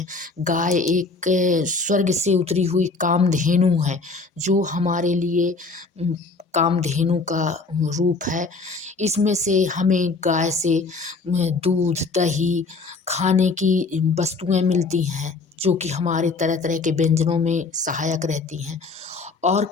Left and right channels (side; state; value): right; quieter; 3.9 dB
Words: गाय एक स्वर्ग से उतरी हुई कामधेनु है, जो हमारे लिए कामधेनु का रूप है। इसमें से हमें गाय से दूध, दही, खाने की वस्तुएं मिलती हैं, जो कि हमारे तरह तरह के व्यंजनों में सहायक रहती हैं। और